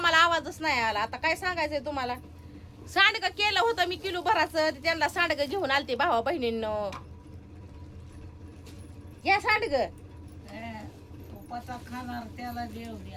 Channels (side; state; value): both; identical; correlation 1.00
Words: आवाजच नाही आला. आता काय सांगायचंय तुम्हाला. सांडगं केलं होतं मी किलो भराचं. त्यांना सांडगं घेऊन आलते भावा बहिणींनो. या सांडगं उपासा खाणार त्याला देव